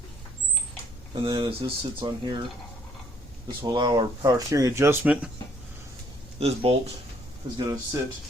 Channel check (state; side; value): normal; both; correlation 0.64